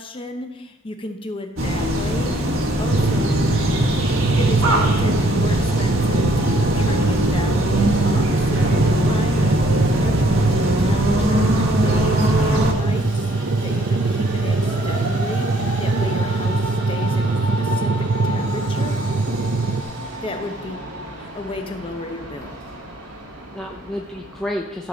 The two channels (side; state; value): both; normal; correlation 0.65